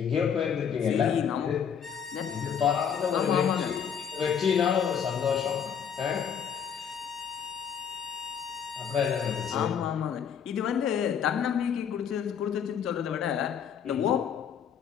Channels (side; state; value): right; quieter; 7.7 dB